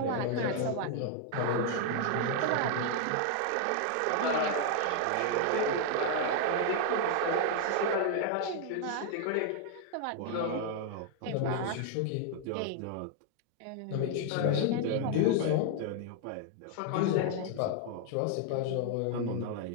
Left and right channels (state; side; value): different; both; correlation 0.00